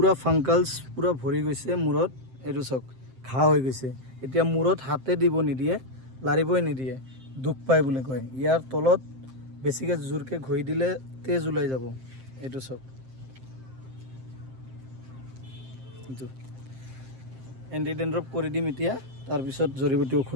ফাংকালছ, পূৰা ভৰি গৈছে মূৰত। এইটো চাওক, ঘা হৈ গৈছে। এতিয়া মূৰত হাতে দিব নিদিয়ে, লাৰিবই নিদিয়ে, দুখ পায় বুলি কয়। ইয়াৰ তলত বেছিকৈ জোৰকৈ ঘঁহি দিলে তেজ ওলাই যাব। এইটো চাওক, এইটো এণ্টি ডেণ্ড্ৰফ কৰি দিম এতিয়া, তাৰপিছত জৰিবুটি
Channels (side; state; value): left; late; 7.6 ms